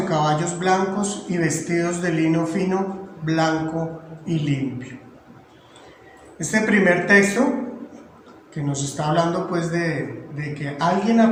caballos blancos y vestidos de lino fino, blanco y limpio. Este primer texto que nos está hablando pues de que alguien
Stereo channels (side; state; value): both; identical; correlation 1.00